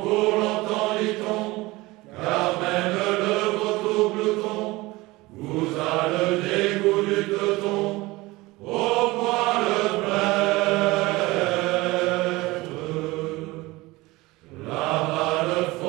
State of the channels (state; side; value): quieter; left; 20.9 dB